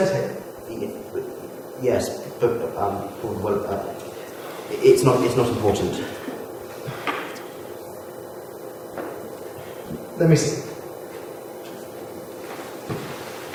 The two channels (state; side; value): identical; both; correlation 1.00